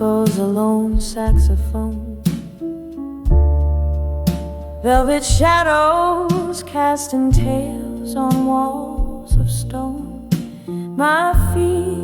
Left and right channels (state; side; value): identical; both; correlation 1.00